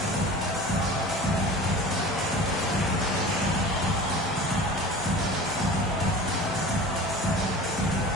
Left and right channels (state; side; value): normal; both; correlation 0.38